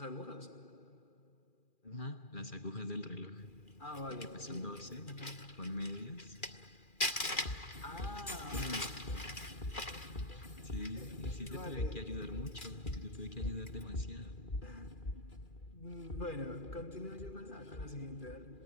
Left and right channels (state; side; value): late; right; 2.4 ms